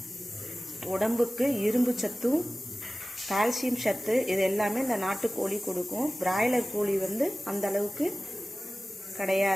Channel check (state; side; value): normal; both; correlation 0.96